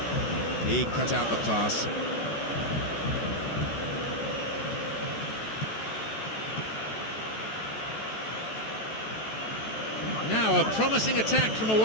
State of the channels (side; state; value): right; late; 14 ms